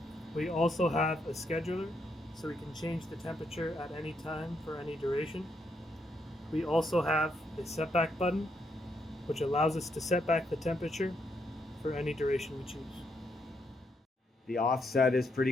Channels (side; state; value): both; normal; correlation 0.77